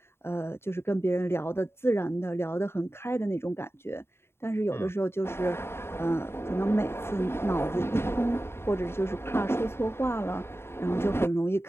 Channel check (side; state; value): right; late; 0.12 ms